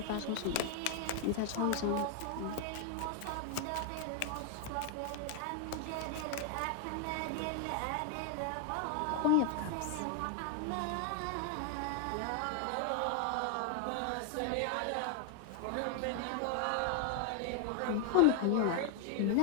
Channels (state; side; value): different; both; correlation 0.00